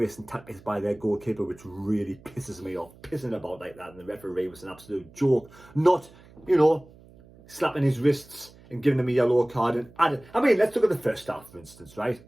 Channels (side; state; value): right; noise; hum, 24 dB below the sound